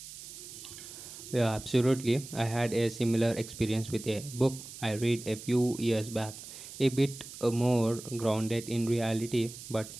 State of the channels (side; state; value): right; noise; hiss, 13 dB below the sound